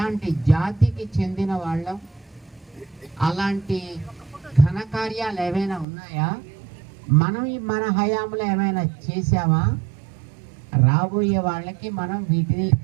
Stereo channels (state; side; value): drops out; left; at 5.9 s